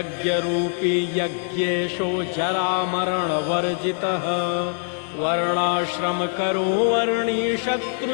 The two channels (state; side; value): silent; right; 61 dB below the other